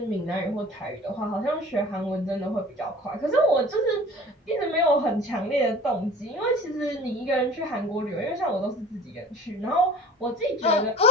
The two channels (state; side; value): normal; both; correlation 0.44